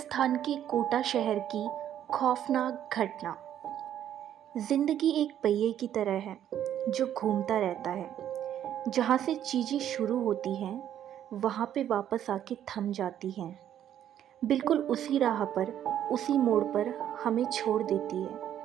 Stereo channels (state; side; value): quieter; left; 10.6 dB